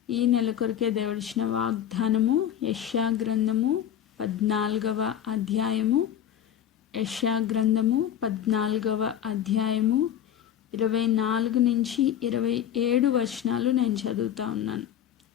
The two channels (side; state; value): right; quieter; 10.0 dB